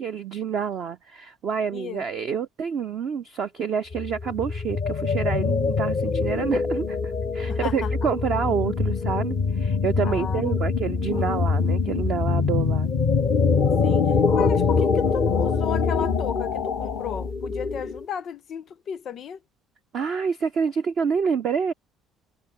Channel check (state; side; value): normal; both; correlation 0.58